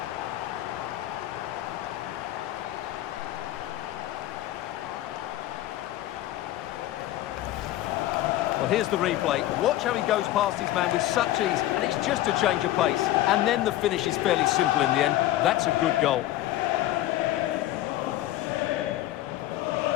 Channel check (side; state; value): right; quieter; 14.7 dB